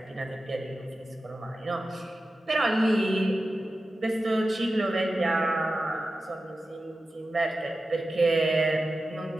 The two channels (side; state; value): both; normal; correlation 0.93